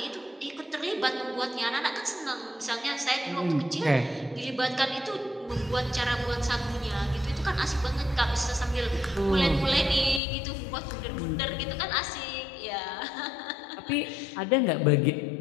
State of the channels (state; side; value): drops out; right; at 10.2 s